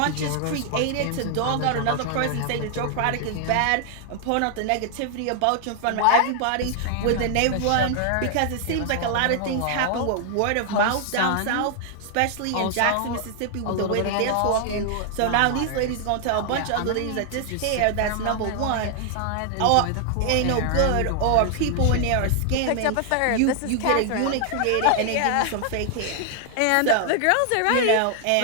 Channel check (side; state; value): both; different; correlation 0.00